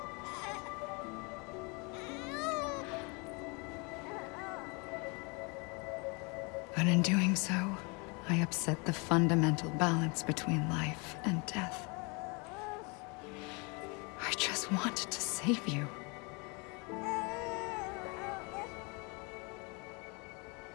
But in doing so, I upset the fundamental balance between life and death. I just wanted to save you.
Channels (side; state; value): right; quieter; 30.6 dB